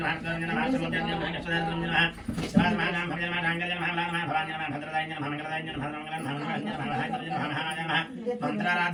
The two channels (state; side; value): identical; both; correlation 1.00